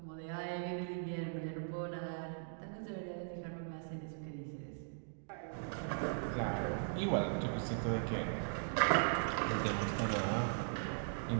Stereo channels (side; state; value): left; silent; digital silence